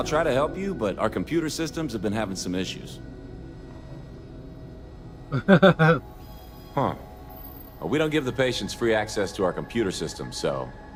try to help you, but our computer systems have been having some issues. Huh. Well, we don't give the patients free access to our computer system, so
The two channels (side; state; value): both; identical; correlation 1.00